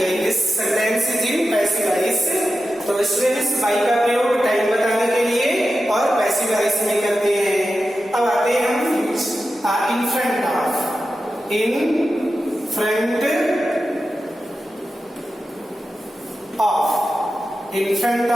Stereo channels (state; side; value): normal; both; correlation 0.91